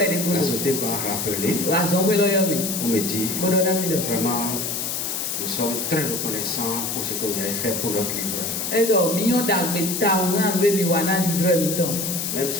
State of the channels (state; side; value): noise; left; hiss, 2 dB below the sound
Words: la société m'a rappelé pour me dire, vraiment, nous sommes très reconnaissants pour ce que vous avez fait pour notre livreur. Même